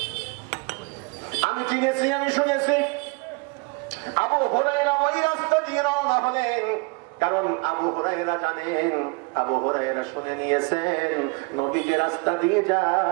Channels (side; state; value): left; quieter; 29.3 dB